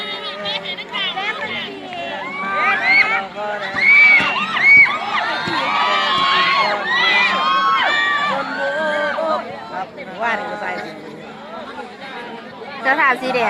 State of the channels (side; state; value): both; identical; correlation 1.00